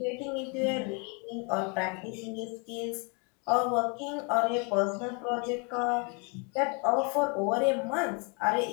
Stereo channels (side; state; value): right; quieter; 34.2 dB